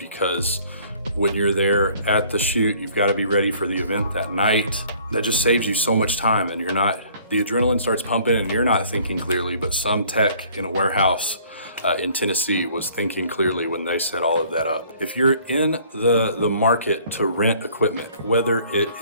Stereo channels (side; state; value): both; inverted; correlation -0.56